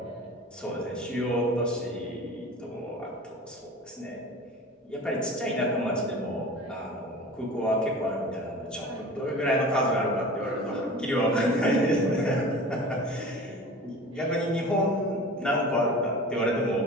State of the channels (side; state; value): both; normal; correlation 0.38